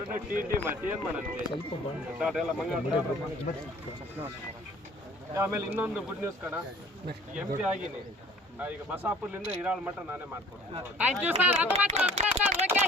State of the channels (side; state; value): both; normal; correlation 0.51